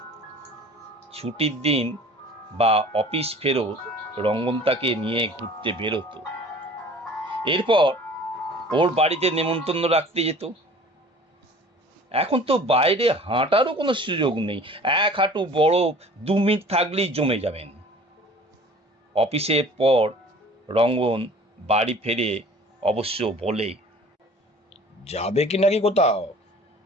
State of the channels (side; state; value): both; normal; correlation 0.47